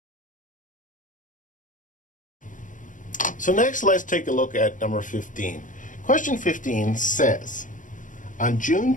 So next, let's take a look at number 15. Question 15 says, on June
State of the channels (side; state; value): right; late; 0.38 ms